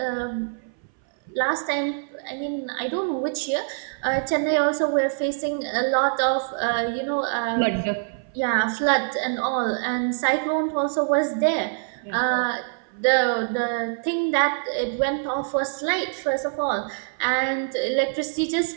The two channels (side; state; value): left; silent; 59 dB below the other